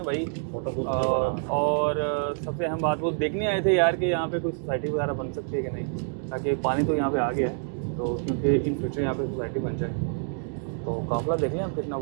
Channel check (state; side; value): silent; left; 58 dB below the other